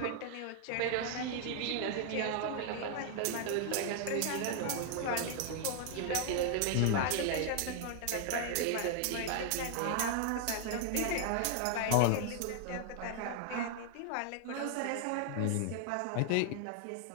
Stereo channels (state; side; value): different; both; correlation 0.00